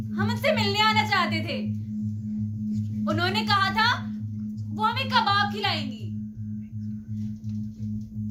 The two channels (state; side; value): identical; both; correlation 1.00